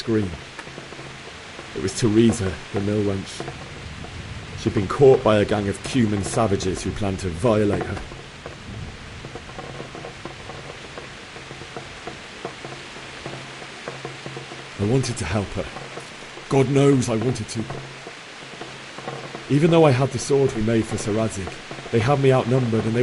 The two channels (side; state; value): both; identical; correlation 1.00